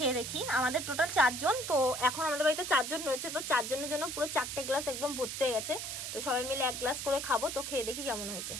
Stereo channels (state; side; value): noise; right; hiss, 5 dB below the sound